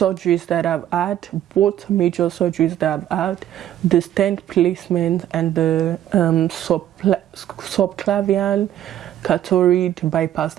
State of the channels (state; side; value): quieter; left; 11.7 dB